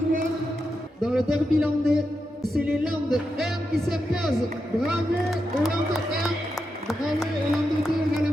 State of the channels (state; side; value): normal; both; correlation 0.86